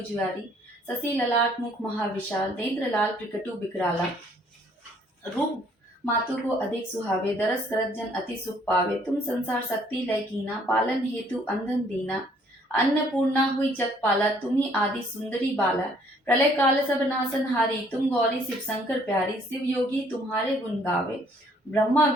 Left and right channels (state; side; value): normal; both; correlation 0.62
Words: ससी ललाट मुख महाविशाल, नेत्र लाल प्रकटु बिकराला। रूप मातु को अधिक सुहावे, दरस करत जन अति सुख पावे। तुम संसार शक्ति लय कीना, पालन हेतु अंधन दीना। अन्नपूर्णा हुई जग पाला, तुम्ही आदि सुंदरी बाला। प्रलय काल सब नासन हारी, तुम गौरी शिव शंकर प्यारी। शिव योगी तुम्हारे गुण गावे, ब्रह्मा